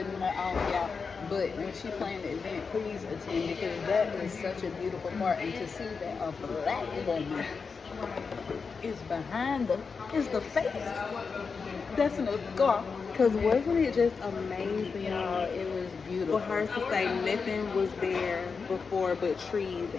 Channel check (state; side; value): quieter; right; 5.2 dB